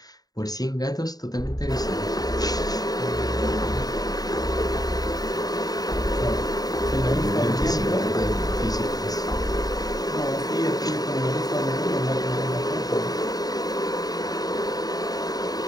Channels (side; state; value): right; late; 0.18 ms